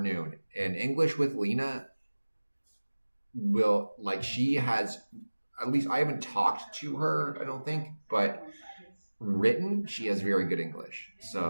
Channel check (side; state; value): both; inverted; correlation -1.00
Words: And English with Lena will, like, she has, at least I haven't talked to her, I don't think, but written, she has very good English.